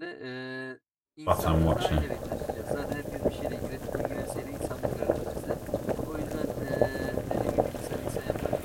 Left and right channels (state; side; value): identical; both; correlation 1.00